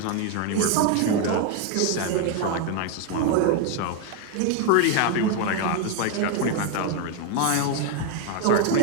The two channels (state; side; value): different; both; correlation 0.01